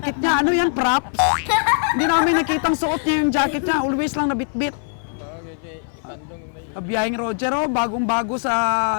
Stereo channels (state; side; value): silent; right; 59 dB below the other